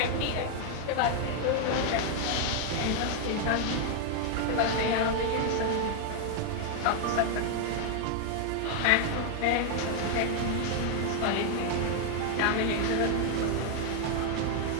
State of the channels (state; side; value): different; both; correlation 0.00